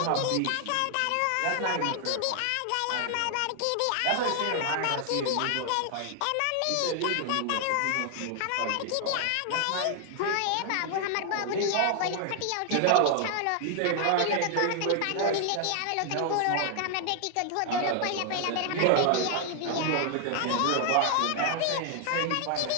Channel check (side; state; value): both; different; correlation 0.00